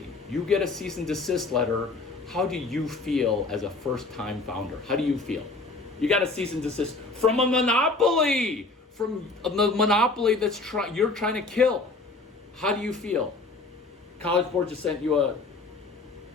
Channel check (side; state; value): right; quieter; 3.5 dB